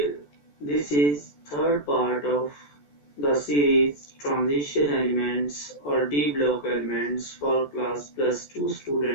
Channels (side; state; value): right; late; 14 ms